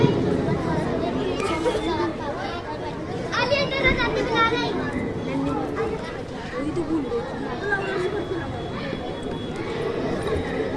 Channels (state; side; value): identical; both; correlation 1.00